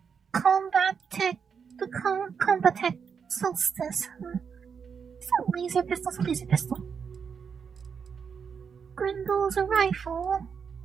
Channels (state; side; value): quieter; left; 6.4 dB